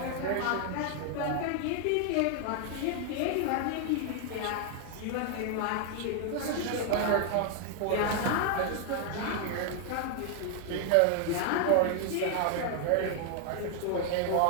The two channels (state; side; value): different; both; correlation 0.00